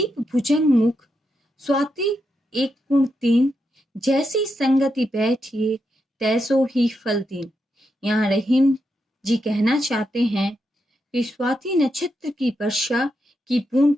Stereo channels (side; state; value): both; normal; correlation 0.84